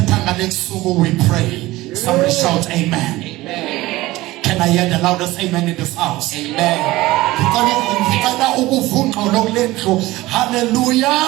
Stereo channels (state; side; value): quieter; left; 18.5 dB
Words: pray. Somebody shout amen. Amen. Can I hear the loudest amen in this house? Amen. Hallelujah.